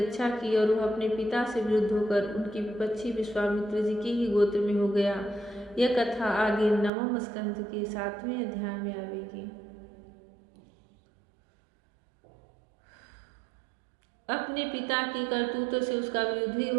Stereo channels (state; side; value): drops out; left; at 6.9 s